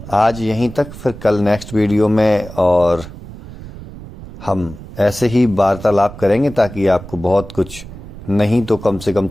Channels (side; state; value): right; noise; rumble, 14 dB below the sound